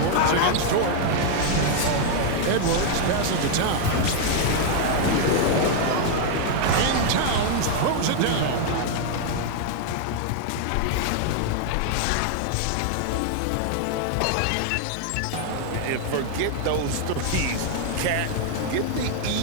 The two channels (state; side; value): different; both; correlation 0.00